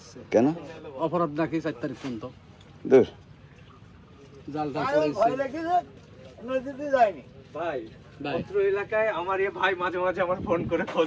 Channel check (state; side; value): identical; both; correlation 1.00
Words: কেন? অপরাধ নাকি 4 তারিখ পর্যন্ত। দূর। জাল পড়েছে। নদীতে যায়নি ভাই। অত্র এলাকায় আমার এ ভাই মাঝে মাঝে আমার ফোন করে